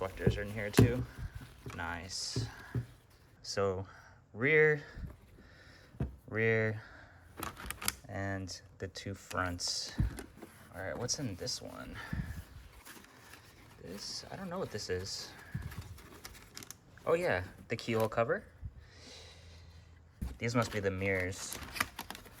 are in here too. Nice. So rear, and the 2 fronts. All right, what's in this one? This, I don't know what this is. Oh yeah, the keyhole cover. These must be the mirrors.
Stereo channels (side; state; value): both; identical; correlation 1.00